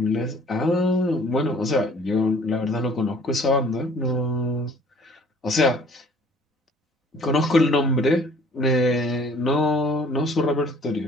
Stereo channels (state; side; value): normal; both; correlation 0.54